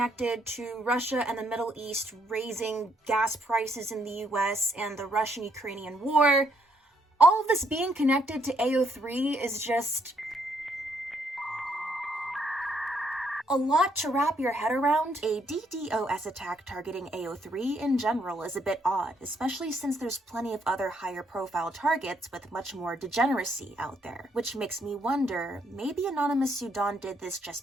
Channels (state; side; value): normal; both; correlation 0.72